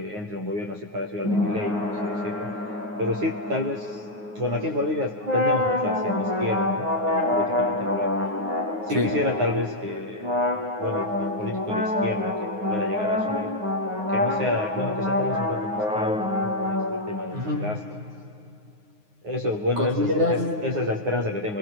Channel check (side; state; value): left; late; 9.5 ms